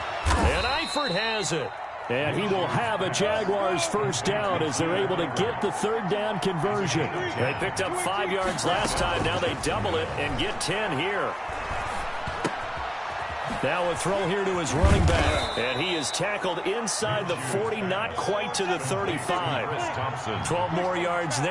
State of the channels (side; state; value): both; identical; correlation 1.00